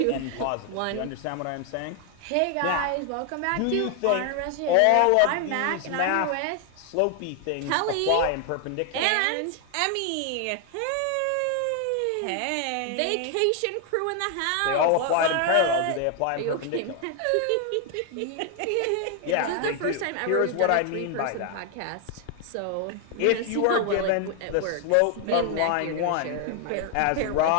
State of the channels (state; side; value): different; both; correlation 0.00